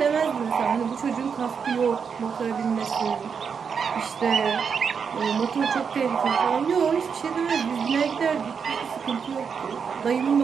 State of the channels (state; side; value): quieter; left; 6.4 dB